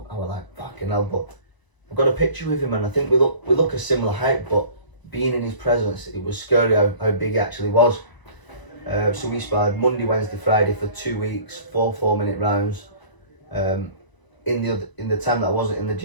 I was like, fucking hell. But I've got a picture with him and I think we look a similar height, but being in his presence, it was scary how big he actually was. So we sparred Monday, Wednesday, Friday for 2 weeks, 4 4-minute rounds. in the time that I wasn't in the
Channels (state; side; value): late; right; 1.0 ms